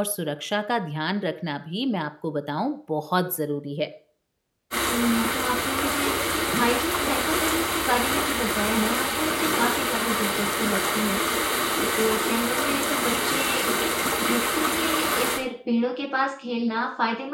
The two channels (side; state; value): both; identical; correlation 1.00